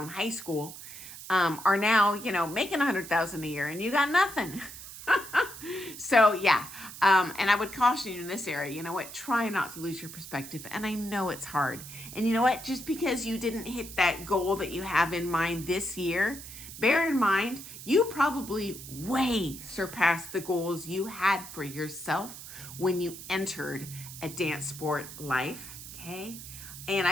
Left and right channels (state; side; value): noise; right; hiss, 13 dB below the sound